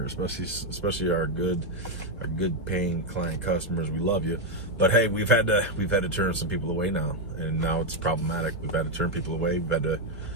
especially our good paying client customers. We love you, but hey, we've had to turn some people away now, and now it's problematic. We've had to turn people away.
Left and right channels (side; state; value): both; normal; correlation 0.03